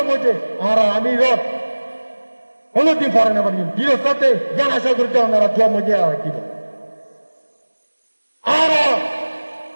মধ্যে আর আমির কোনদিন পরে না পারি দিনের সাথে জ্ঞান আশা করতে ওনারা দোয়া মধ্যে কি আর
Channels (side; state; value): both; inverted; correlation -1.00